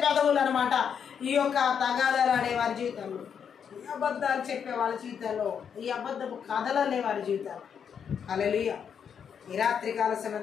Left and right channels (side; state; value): right; quieter; 7.5 dB